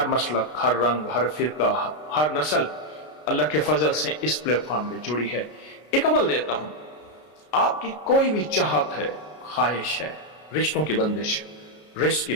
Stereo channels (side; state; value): right; late; 33 ms